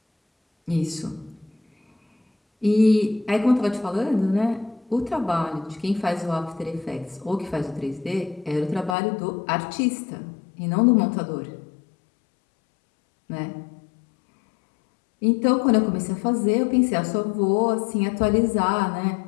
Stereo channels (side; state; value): right; drops out; at 9.0 s